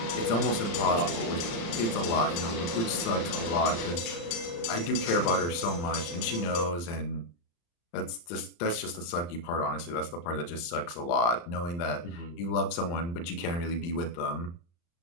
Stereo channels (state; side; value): late; right; 35 ms